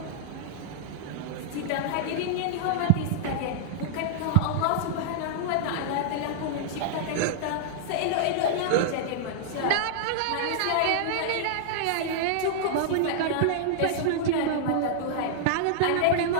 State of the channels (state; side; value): different; both; correlation -0.02